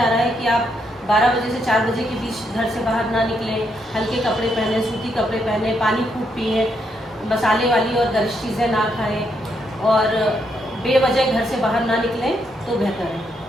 रहा है कि आप 12 बजे से 4 बजे के बीच घर से बाहर ना निकलें, हल्के कपड़े पहने, सूती कपड़े पहने, पानी खूब पिए, मसाले वाली और गरिष्ठ चीज़ें ना खाएं और बेवजह घर से बाहर ना निकलें तो बेहतर है।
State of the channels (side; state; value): both; normal; correlation 0.77